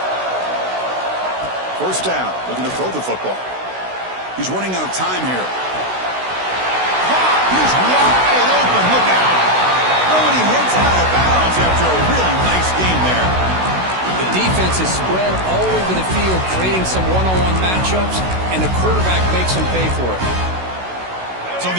First down, looking to throw the football. He's running out of time here. He's wide open, look out. Oh, and he hits out of bounds after a really nice game there. The defense is spread all over the field, creating some one-on-one matchups, and the quarterback makes them pay for it. So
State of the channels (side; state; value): left; late; 16 ms